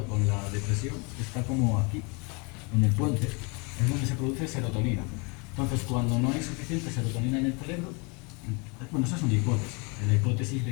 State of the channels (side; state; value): right; quieter; 31.1 dB